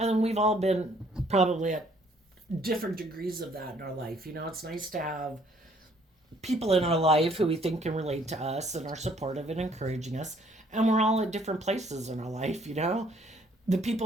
then we've all been probably at different degrees of that in our life. It's nice to have people in our life who we think can relate to us and are supportive and encouraging us. And we're all at different places in our life. The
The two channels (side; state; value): both; normal; correlation 0.62